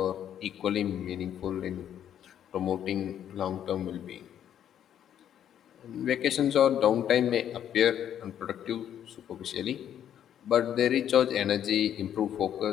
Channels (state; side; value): quieter; right; 10.0 dB